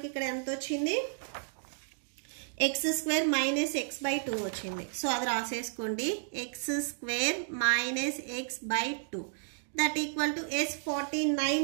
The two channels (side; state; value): left; silent; digital silence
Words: ఇక్కడ ఎంత వచ్చింది? x² మైనస్ x/2 వచ్చింది. సో అది రాసేసుకోండి. x² minus x/2 that equal to S49